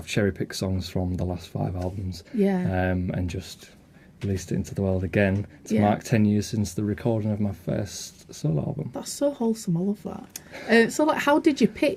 cherry-picked songs from the last 5 albums. Yeah. And just released it into the world again to mark 10 years since the recording of my first solo album. That's so wholesome. I love that. So, like, how did you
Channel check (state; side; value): identical; both; correlation 1.00